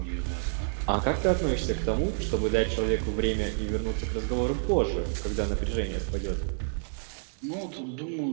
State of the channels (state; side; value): silent; left; 59 dB below the other